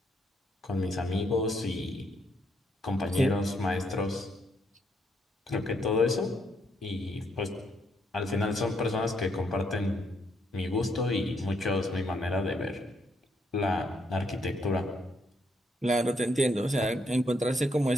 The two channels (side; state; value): both; normal; correlation 0.74